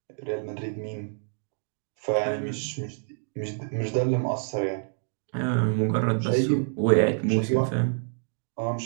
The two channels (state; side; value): silent; left; 60 dB below the other